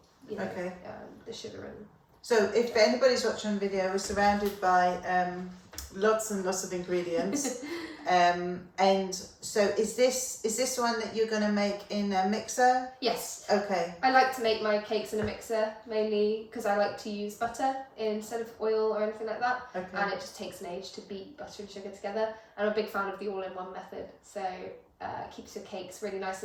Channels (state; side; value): identical; both; correlation 1.00